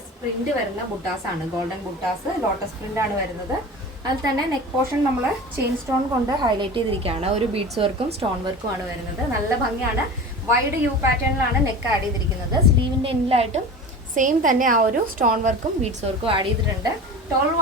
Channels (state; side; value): normal; both; correlation 0.34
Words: പ്രിന്റ് വരുന്ന ബുട്ടാസ് ആണ്. ഗോൾഡൻ ബുട്ടാസ് ലോട്ടസ് പ്രിന്റ് ആണ് വരുന്നത്. അതിൽ തന്നെ നെക്ക് പോർഷൻ നമ്മൾ ചെയിൻ സ്റ്റോൺ കൊണ്ട് ഹൈലൈറ്റ് ചെയ്തിരിക്കുകയാണ്. ഒരു ബീഡ്സ് വർക്കും സ്റ്റോൺ വർക്കും ആണ് വരുന്നത്. നല്ല ഭംഗിയാണ്. വൈഡ് യു പാറ്റേണിലാണ് നെക്ക് ആഡ് ചെയ്തിരിക്കുന്നത്. സ്ലീവിന്റെ എൻഡിലായിട്ടും സെയിം തന്നെ ആ ഒരു സ്റ്റോൺ വർക്കും ബീഡ്സ് വർക്കും ആഡ് ചെയ്തിട്ടുണ്ട്. 12